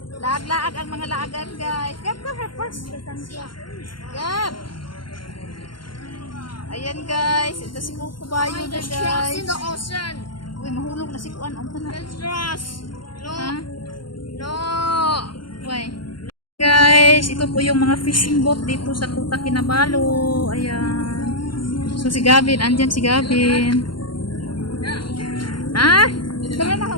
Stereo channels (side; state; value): right; late; 0.72 ms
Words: laag-laag ang mga laagan guys. Gab ka first. Gab. Ayan guys, ito si Kukubayo na guys. In the ocean. Uy, mahulog na si kuan. Ang tanan. There's trust. No. Ha? No. Uy. Guys, ito po yung mga fishing boat dito sa Kuta Kinabalu. Ayan. So si Gavin, andyan si Gavin. Ha? Tara na,